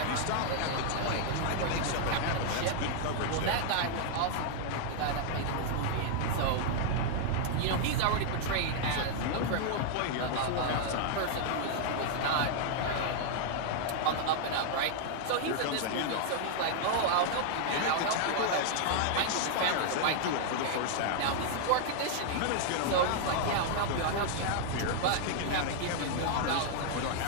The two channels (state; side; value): different; both; correlation -0.01